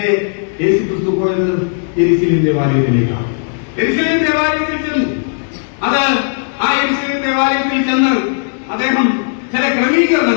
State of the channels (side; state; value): right; silent; digital silence